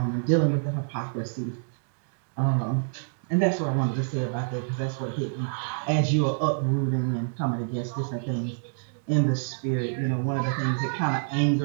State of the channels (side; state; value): left; silent; digital silence